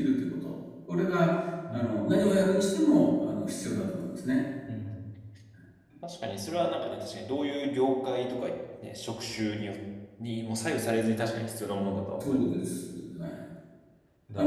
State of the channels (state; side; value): identical; both; correlation 1.00